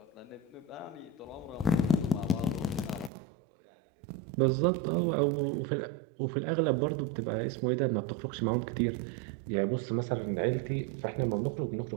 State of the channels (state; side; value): drops out; left; at 3.1 s